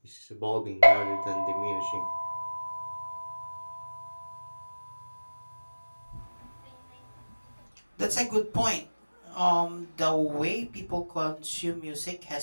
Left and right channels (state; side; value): inverted; both; correlation -1.00